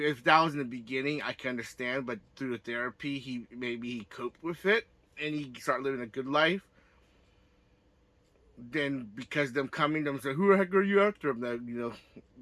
that was in the beginning, I can understand. But through the therapy, he coped with it and he started living a good life. Then because them coming, them say, "Who the heck are you after him?" That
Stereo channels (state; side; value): identical; both; correlation 1.00